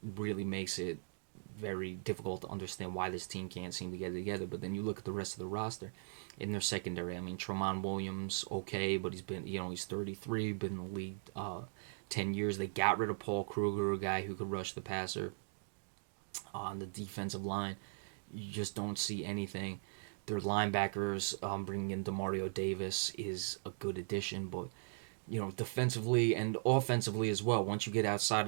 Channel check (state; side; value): silent; left; digital silence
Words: really makes it very difficult to understand why this team can't seem to get it together. But then you look at the rest of the roster in their secondary. I mean, Tramon Williams, okay, but he's been, he's 33, been in the league 10 years. They got rid of Paul Kruger, a guy who could rush the passer. On the defensive line, you just don't see anything. Their linebackers, bringing in Demario Davis is a good addition, but defensively and offensively as well. Once you get outside